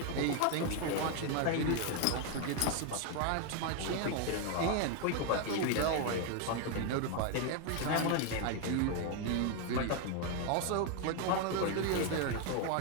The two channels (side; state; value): both; different; correlation 0.01